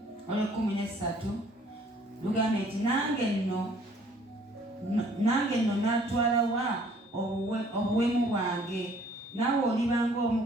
olw'ekumi lugamba nti nange nno natwala wa obuwemu bwange naawe olibanga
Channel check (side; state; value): both; normal; correlation 0.58